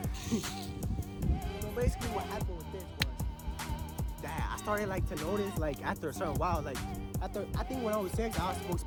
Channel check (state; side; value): identical; both; correlation 1.00